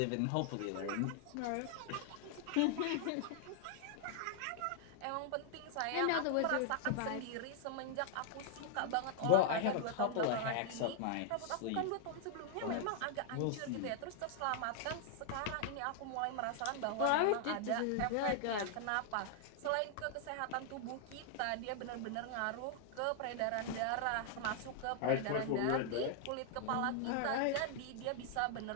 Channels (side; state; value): both; different; correlation 0.00